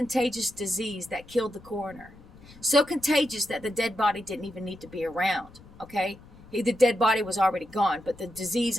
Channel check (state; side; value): noise; left; rumble, 22 dB below the sound